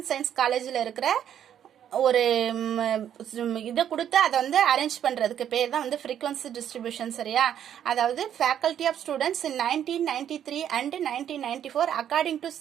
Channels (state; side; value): quieter; left; 9.8 dB